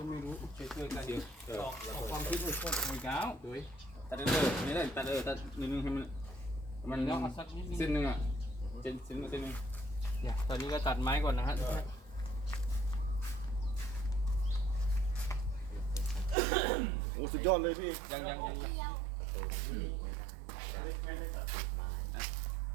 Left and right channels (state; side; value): drops out; left; at 16.4 s